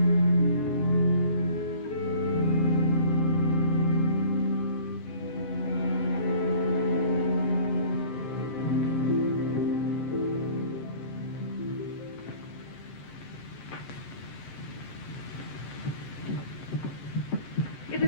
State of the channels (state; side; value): late; right; 14 ms